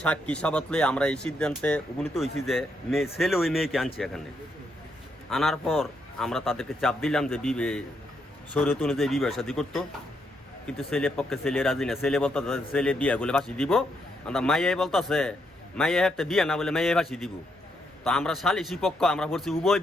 সাক্ষী সাবাতলে আমরা এই সিদ্ধান্তে উপনীত হয়েছি যে ছেলে ওই মেয়েকে আনছে এখানে। আনার পর আমরা তাদেরকে চাপ দিলাম যে শরীয়ত অনুযায়ী বিবাহ শাদী করতো, কিন্তু ছেলের পক্ষে ছেলে রাজি না। ছেলে বলতে ছেলে বিয়া বলে ফাঁসি দিব, আমরা মাইয়াই বলতেছে মাইয়া একটা বিয়া না বলে মাইয়াই ফাঁসি দিব। তো আমরা সালিসি পক্ষ আমরা বলছি উভয়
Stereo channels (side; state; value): both; normal; correlation 0.78